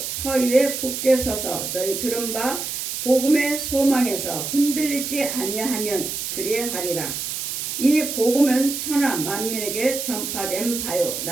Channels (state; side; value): noise; right; hiss, 4 dB below the sound